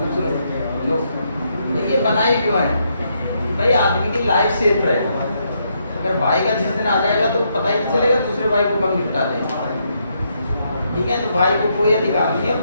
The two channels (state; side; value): inverted; both; correlation -0.77